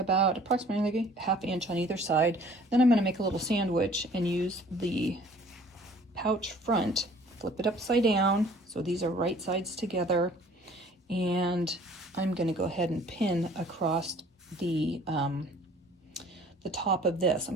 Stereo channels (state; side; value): normal; both; correlation 0.53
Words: approximately 1/2 inch on either side. Then I'm going to make a little sandwich and use the pouch front, flip it upside down, so these are right sides together, and I'm going to go ahead and pin across the top of this.